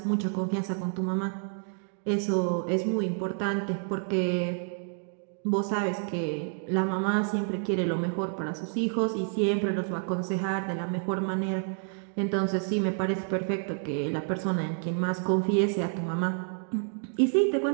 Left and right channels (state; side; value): silent; left; 59 dB below the other